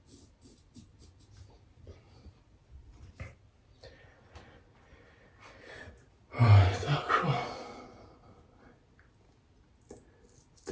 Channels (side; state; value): both; identical; correlation 1.00